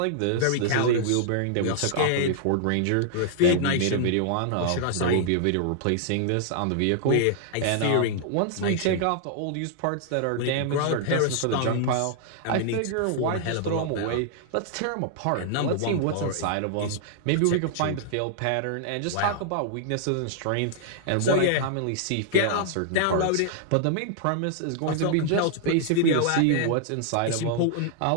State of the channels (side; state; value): both; different; correlation -0.01